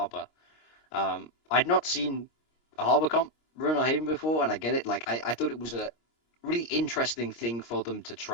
I'd not seen a Harbor comp run on Haven before, and I get it. Like, I thought it was a really interesting thing for them to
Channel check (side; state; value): right; late; 26 ms